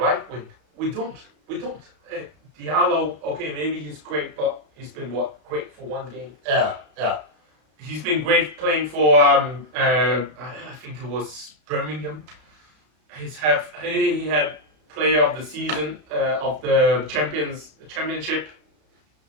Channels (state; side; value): late; left; 33 ms